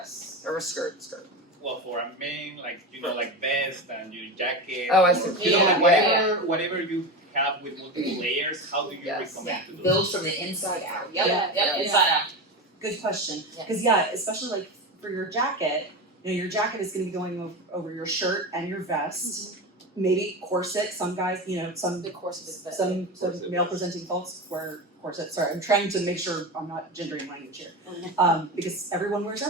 or a skirt? Well, for a man, like vest and your jacket. Oh, I or, see. like Yeah. whatever you have with multiple layers, how do you Yes. recommend to do Build from the inside out. Yep, inside out. Good question. Yeah. Because yeah, especially like for your jacket, your jacket is going to be going over your shirt and your vest. Maybe corset. Some guys, some The corset is better. some Corset. male presenting folks wear corsets. Sorry, I'm trying to make sure I'm not gendering language here. Because everyone wears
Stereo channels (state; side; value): normal; both; correlation 0.22